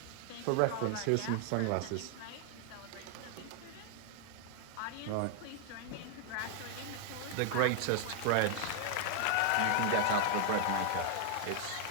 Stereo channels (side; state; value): both; different; correlation 0.00